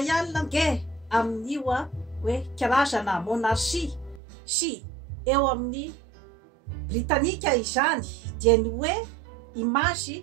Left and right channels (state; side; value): drops out; left; at 4.2 s